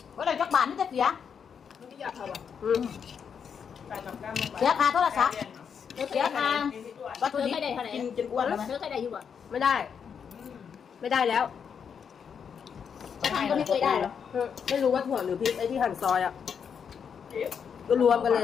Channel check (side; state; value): right; quieter; 7.0 dB